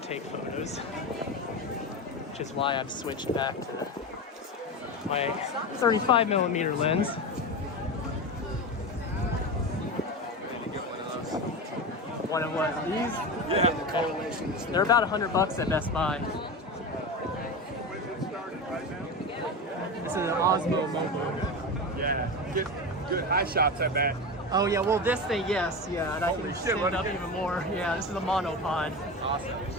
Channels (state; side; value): normal; both; correlation 0.22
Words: take photos, which is why I've switched back to my 35mm lens. One of what? These? Yeah. They're about $100 at Best Buy. This is an Osmo Mobile. Yeah, get good high shots, I bet. Oh yeah, well this thing, yes, yeah, and I Holy can shit, stand what up is it? even more. Yeah, this is a monopod. Awesome.